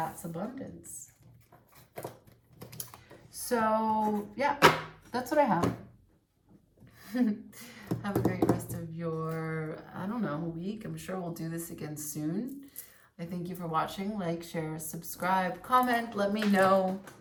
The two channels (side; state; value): both; identical; correlation 1.00